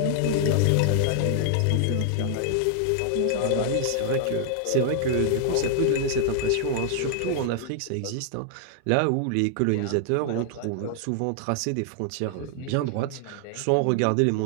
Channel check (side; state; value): both; different; correlation 0.00